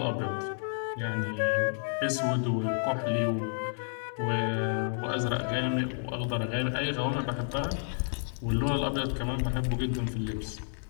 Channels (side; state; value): right; silent; 57 dB below the other